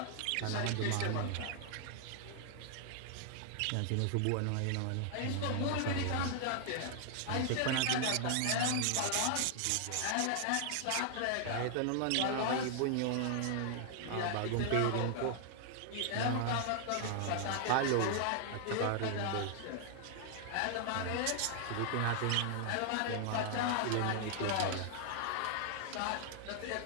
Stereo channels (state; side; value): different; both; correlation 0.00